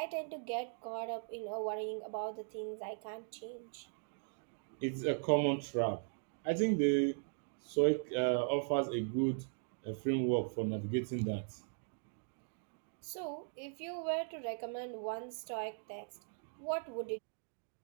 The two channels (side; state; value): left; silent; digital silence